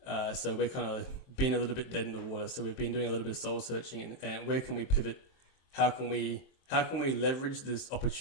So we're kind of been a little bit dead in the water. So we've been doing a little bit of soul searching and where can we pivot? How can we leverage this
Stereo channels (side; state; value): right; late; 23 ms